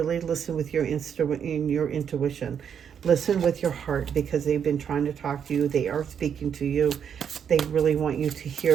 listen with your intuition. Listen with your heart, because they've been trying to talk to you. They are speaking to you. They really want you to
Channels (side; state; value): left; quieter; 7.9 dB